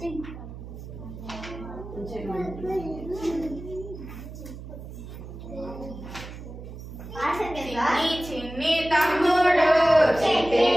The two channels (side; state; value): right; noise; hum, 12 dB below the sound